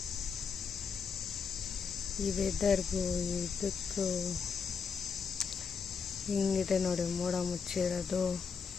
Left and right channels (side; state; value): right; quieter; 5.8 dB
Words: ಈ ವೆದರ್ಗೂ ಇದಕ್ಕೂ ಹಿಂಗಿದೆ ನೋಡಿ, ಮೋಡ ಮುಚ್ಚಿರೋದು.